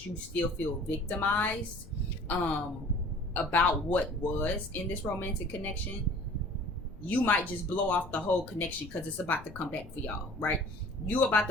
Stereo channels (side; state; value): left; noise; rumble, 18 dB below the sound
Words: you still feel victimized about what was in this romantic connection, you might just blow off the whole connection because it's about to come back for y'all, right? You about